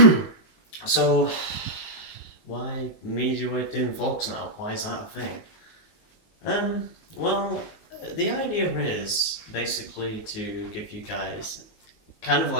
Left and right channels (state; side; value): late; right; 19 ms